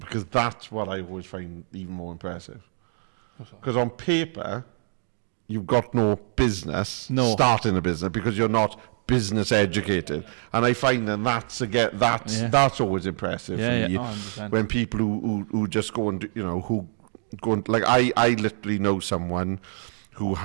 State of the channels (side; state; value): left; silent; digital silence